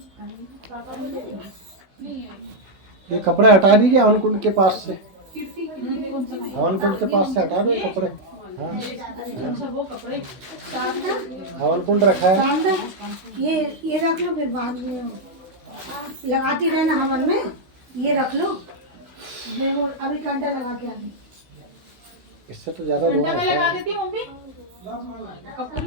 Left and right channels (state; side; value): late; left; 16 ms